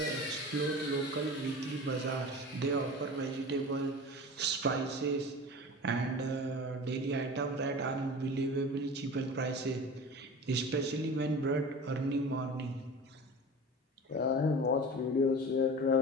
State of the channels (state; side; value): normal; both; correlation 0.35